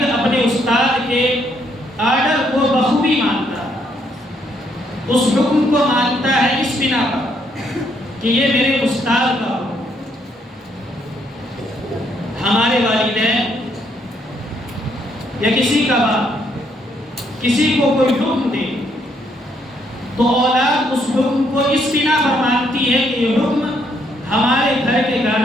اپنے استاد کے آرڈر کو بخوبی مانتا ہے اس حکم کو مانتا ہے اس بنا پر کہ یہ میرے استاد کا حکم ہمارے والدین یا کسی کا باپ کسی کو کوئی حکم دے تو اولاد اس حکم کو اس بنا پر مانتی ہے کہ یہ حکم ہمارے گھر کے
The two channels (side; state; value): both; normal; correlation 0.72